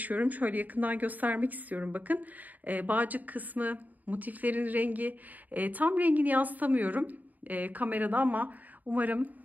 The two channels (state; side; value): late; left; 0.080 ms